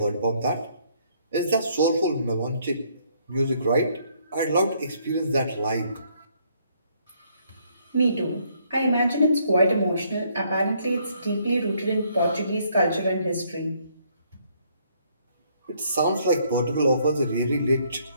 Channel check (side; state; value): both; inverted; correlation -0.68